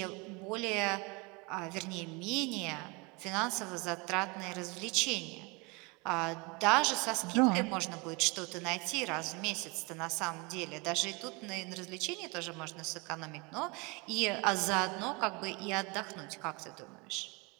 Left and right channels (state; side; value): quieter; left; 28.0 dB